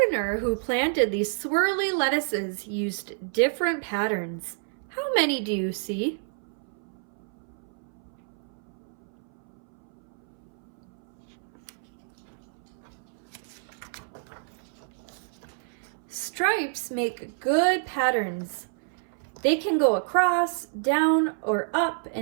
who planted these swirly lettuces used different patterns. How many do you see? Stripes make good patterns. They can go across, down, or up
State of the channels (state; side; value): silent; left; 59 dB below the other